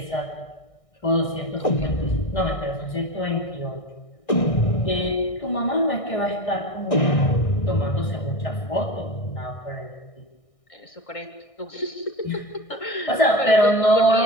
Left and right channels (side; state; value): right; late; 1.6 ms